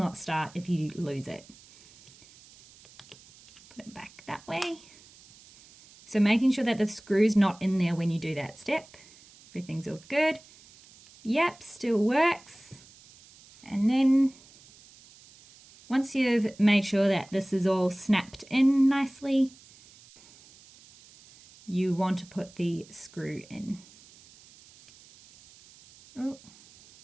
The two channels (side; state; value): right; noise; hiss, 24 dB below the sound